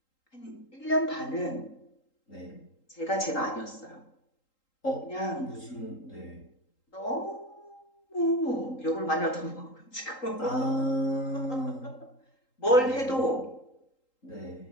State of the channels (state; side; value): late; right; 3.8 ms